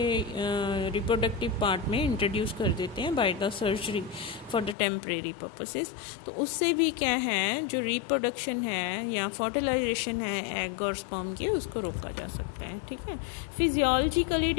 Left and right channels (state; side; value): drops out; right; at 4.8 s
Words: रिप्रोडक्टिव पार्ट में इंट्रोड्यूस कर देते हैं by the surgery for the temporary purposes. तो उससे भी क्या है, जो रिप्रोडक्शन है या फर्टिलाइजेशन है एग और स्पर्म की, उसको रोका जा सकता है। ठीक है, फिजियोलॉजिकली